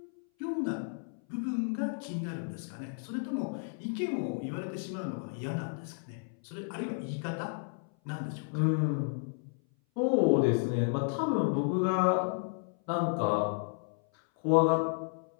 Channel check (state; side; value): silent; right; 56 dB below the other